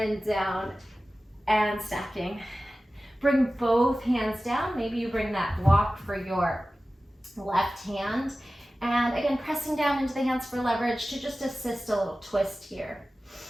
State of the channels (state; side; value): normal; both; correlation 0.96